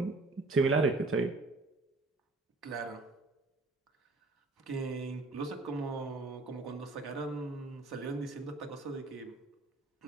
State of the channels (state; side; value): quieter; left; 3.3 dB